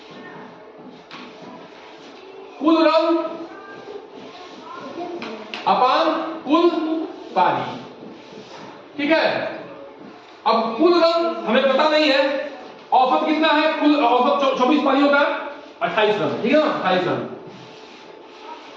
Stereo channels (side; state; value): both; identical; correlation 1.00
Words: कुल रन अपान कुल पारी। ठीक है, अब कुल रन हमें पता नहीं है, औसत कितना है? कुल औसत 24 पारियों का 28 रन। ठीक है ना, 28 रन।